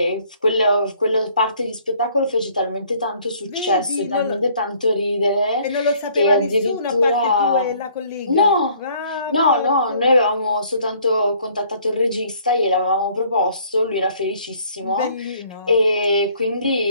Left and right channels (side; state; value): both; inverted; correlation -0.59